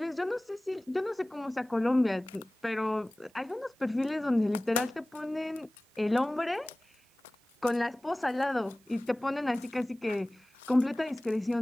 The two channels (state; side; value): normal; both; correlation 0.98